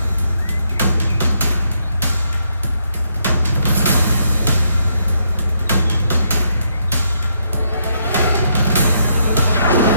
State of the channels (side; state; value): both; inverted; correlation -0.76